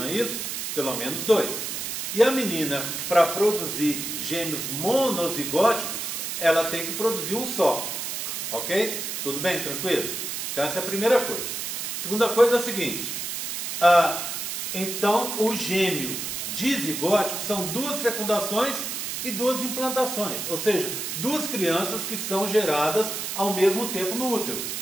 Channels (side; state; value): right; noise; hiss, 4 dB below the sound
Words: é isso? Pelo menos dois. E a menina, para produzir gêmeos monozigóticos, ela tem que produzir um só. Ok? Tudo bem? Tranquilo? Então, essa é a primeira coisa. Segunda coisa é a seguinte. Então, o gêmeo dizigótico são duas fecundações e duas implantações. Ou seja, duas crianças que são geradas ao mesmo tempo no útero.